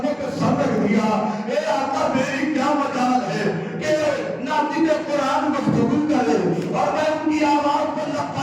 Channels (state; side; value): identical; both; correlation 1.00